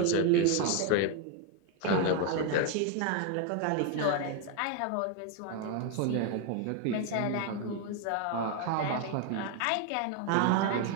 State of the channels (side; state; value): both; different; correlation 0.01